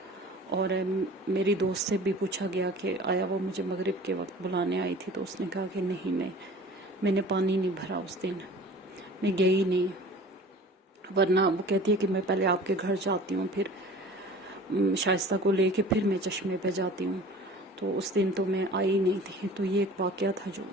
اور میری دوست سے بھی پوچھا گیا کہ آیا وہ مجھے مغرب کے وقت بلانے آئی تھی، تو اس نے کہا کہ نہیں، میں نے پانی نہیں بھرا اس دن، میں گئی نہیں، ورنہ وہ کہتی ہے کہ میں پہلے آپ کے گھر جاتی ہوں، پھر شائستہ کو لے کے پھر میں چشمے پہ جاتی ہوں، تو اس دن تو میں آئی نہیں تھی۔ تو یہ ایک واقعہ تھا جو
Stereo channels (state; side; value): normal; both; correlation 0.43